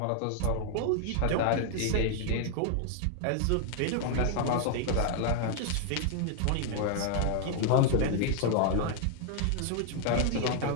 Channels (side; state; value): both; different; correlation 0.00